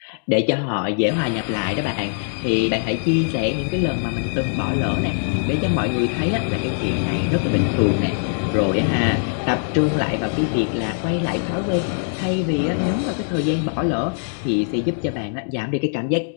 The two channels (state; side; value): silent; right; digital silence